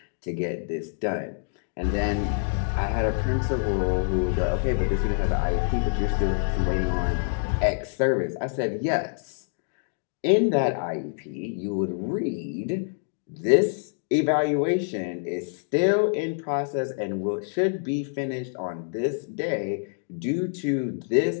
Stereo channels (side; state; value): right; silent; digital silence